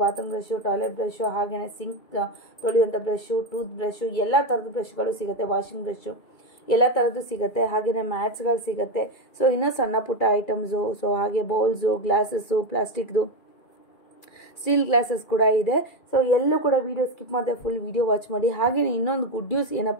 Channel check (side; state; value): right; late; 2.3 ms